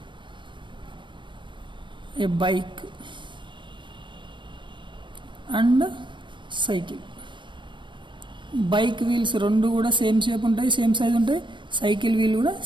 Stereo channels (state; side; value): late; left; 0.23 ms